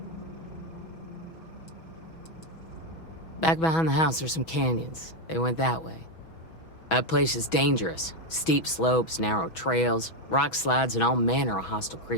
Back behind the house, there's some canyons. They went that way. That place is dangerous. Steep slopes, narrow trails, rock slides, and all manner of hostile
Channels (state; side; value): late; right; 6.2 ms